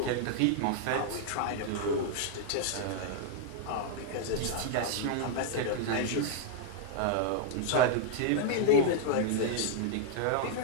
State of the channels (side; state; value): both; different; correlation -0.01